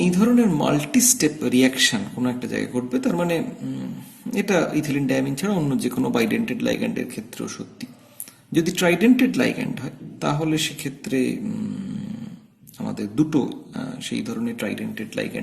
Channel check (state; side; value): identical; both; correlation 1.00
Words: এই ধরনের মাল্টি স্টেপ রিয়াকশন কোনো একটা জায়গায় ঘটবে, তার মানে এটা ইথিলিন ডায়ামিন ছাড়া অন্য যে কোনো বাইডেন্টেড লাইগ্যান্ডের ক্ষেত্রেও সত্যি। যদি ট্রাইডেন্টেড লাইগ্যান্ড হয় তাহলে সেক্ষেত্রে আমাদের দুটো সেই ধরনের ট্রাইডেন্টেড